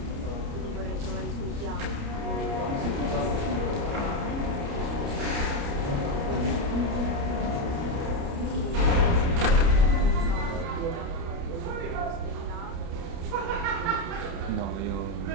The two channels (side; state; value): left; late; 29 ms